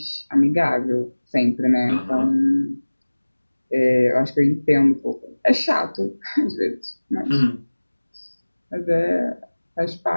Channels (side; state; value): both; inverted; correlation -1.00